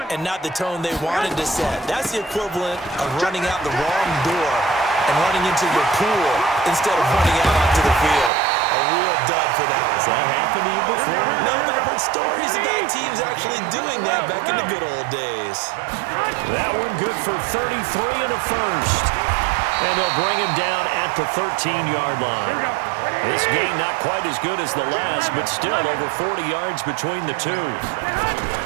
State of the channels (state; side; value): drops out; left; at 8.3 s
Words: and not the tone they wanted to set. That's the equivalent of running out the wrong door and running into your pool instead of running out onto the field. A real dud for that one. Has that happened to you before? No, but I've heard stories about teams actually doing that back in the good old days. That one good for 33 and a first. And they'll bring him down at the 13-yard line. This game not quite as good as the last, but still over 40 yards between the two.